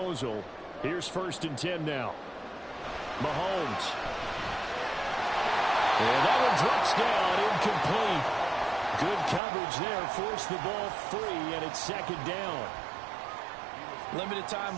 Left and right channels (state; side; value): drops out; left; at 9.4 s